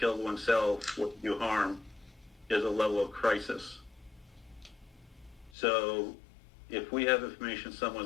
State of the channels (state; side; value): drops out; right; at 5.5 s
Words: oneself or do harm is a level of crisis. So if we have information